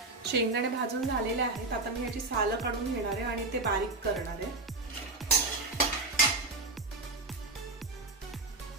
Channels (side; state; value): left; quieter; 3.3 dB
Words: शेंगदाणे भाजून झालेले आहेत। आता मी याची सालं काढून घेणार आहे आणि ते बारीक करणार आहे।